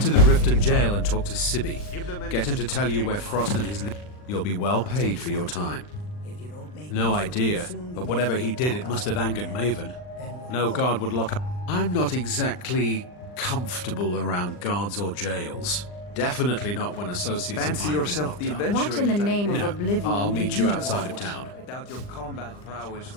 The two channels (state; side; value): late; right; 39 ms